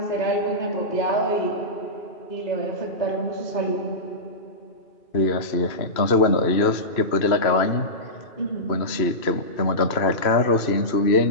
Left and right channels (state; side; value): late; right; 3.0 ms